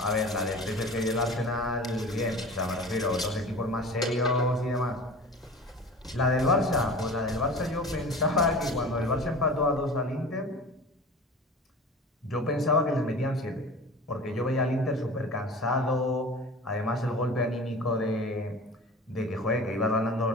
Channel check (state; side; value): normal; both; correlation 0.37